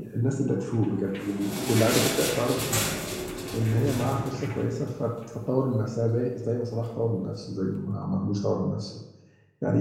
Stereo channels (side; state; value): both; identical; correlation 1.00